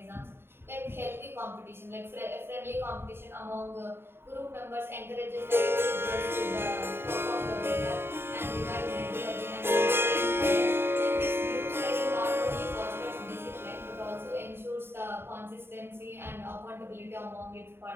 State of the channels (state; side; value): late; left; 0.11 ms